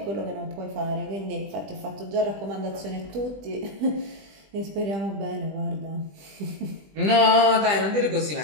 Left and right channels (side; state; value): left; late; 20 ms